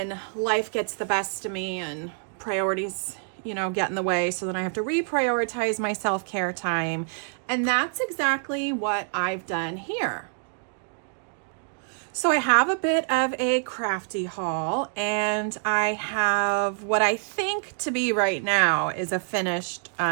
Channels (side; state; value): left; silent; 61 dB below the other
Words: life gets the best of me and priorities get in the way, so then I have to reprioritize my self-care time. And that's exactly what I've done here. So I have a bit of a crafty haul, and I have what I think to be right now is a finished